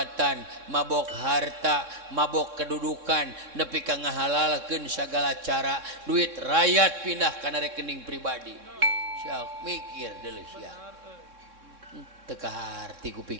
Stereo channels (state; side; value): late; left; 3.6 ms